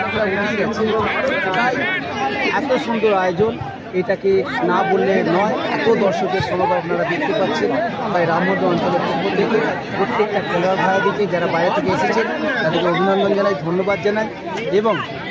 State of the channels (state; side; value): identical; both; correlation 1.00